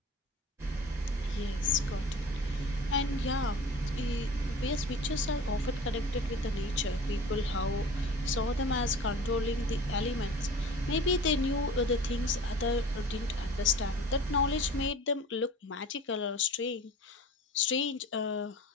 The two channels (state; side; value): normal; both; correlation 0.41